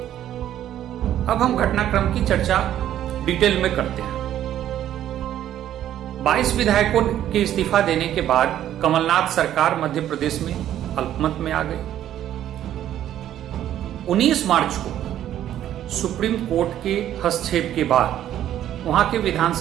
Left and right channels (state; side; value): quieter; left; 11.6 dB